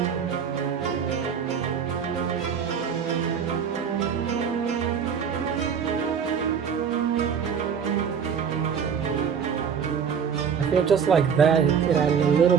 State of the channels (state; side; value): quieter; left; 7.1 dB